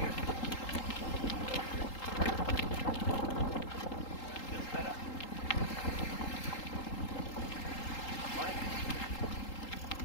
Feels better. Morning.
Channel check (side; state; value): right; late; 3.8 ms